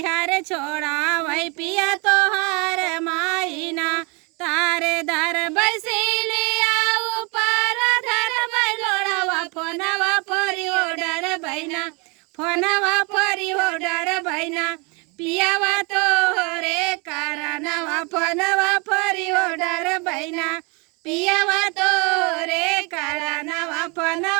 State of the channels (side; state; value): left; quieter; 30.4 dB